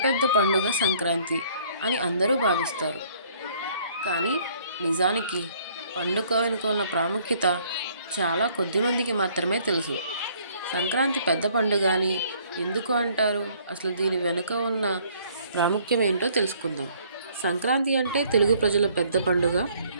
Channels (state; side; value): inverted; both; correlation -0.61